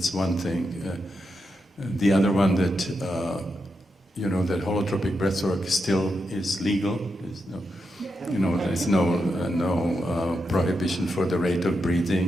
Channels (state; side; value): normal; both; correlation 0.85